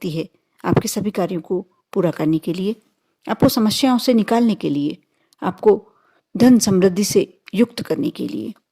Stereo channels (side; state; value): both; identical; correlation 1.00